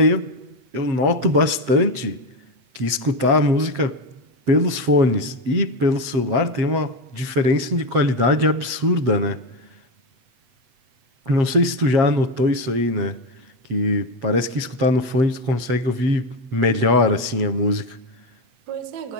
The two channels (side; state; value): left; late; 8.1 ms